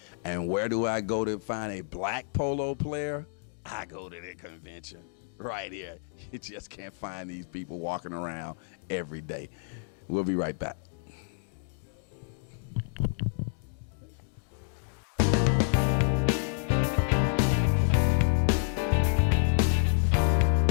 And where do I go to find a black polo player? I go to the convention. Right here. You just can't find these people walking around every day. We'll be right back.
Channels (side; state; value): right; silent; digital silence